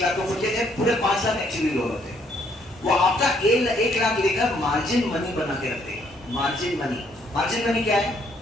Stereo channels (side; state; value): both; normal; correlation 0.68